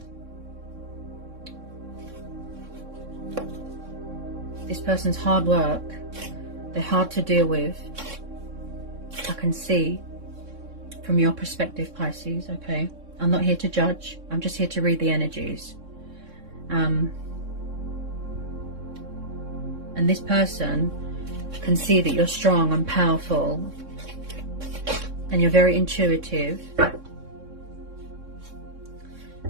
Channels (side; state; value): left; late; 3.6 ms